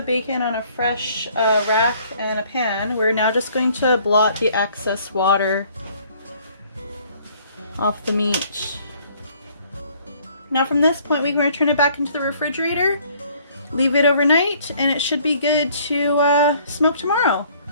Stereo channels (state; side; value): inverted; both; correlation -0.59